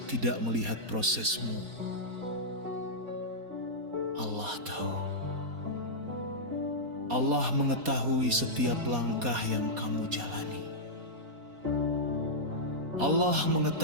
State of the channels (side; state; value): left; late; 4.2 ms